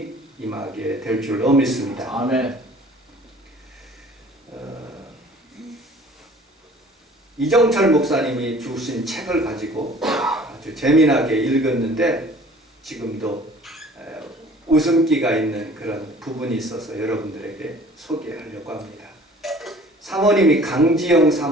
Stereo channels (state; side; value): normal; both; correlation 0.50